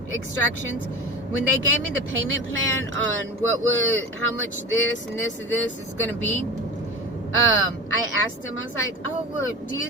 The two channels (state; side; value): normal; both; correlation 0.30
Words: extractions, when they gave me the payment plan on how much this and this and this is going to be, I asked him, I was like, oh, well, do you